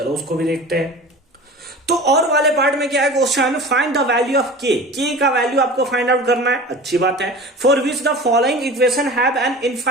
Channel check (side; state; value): both; normal; correlation 0.36